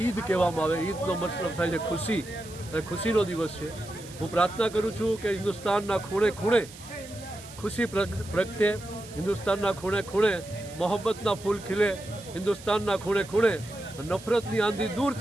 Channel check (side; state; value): right; noise; hiss, 17 dB below the sound